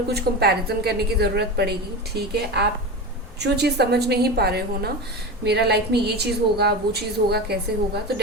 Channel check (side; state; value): both; normal; correlation 0.25